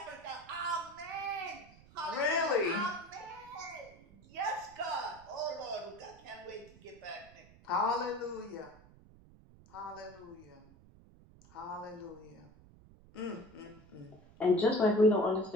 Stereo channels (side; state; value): right; noise; rumble, 23 dB below the sound